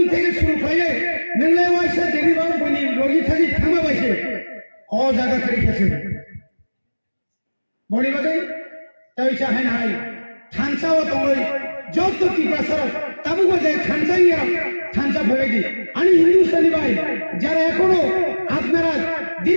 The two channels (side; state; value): both; inverted; correlation -1.00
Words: থেকে শুরু করে নিলে ওয়াইসা দেবিবাবু বনি রোগী থাকি থামা বাইছে ও জায়গা করিতেছে বনিবাগাই তাইছা হাই হাই থানসাও তঙ্গই যত কি পাসার তাবু বাজে থানসাইয়া থানসা ভেবেদি আমি হিন্দুস্তানি ভাই যারা এখনো আপনারা